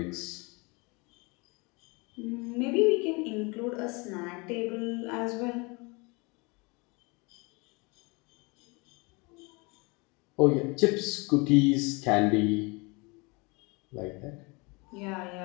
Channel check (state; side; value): quieter; right; 28.1 dB